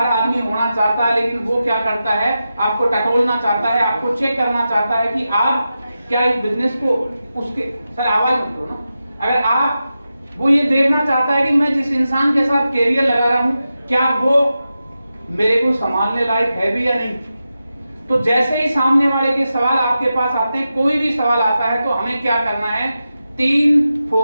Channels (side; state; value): both; inverted; correlation -0.91